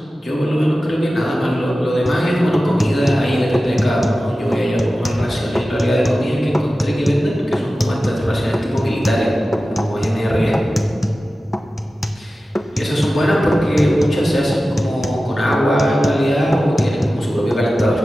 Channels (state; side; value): normal; both; correlation 0.95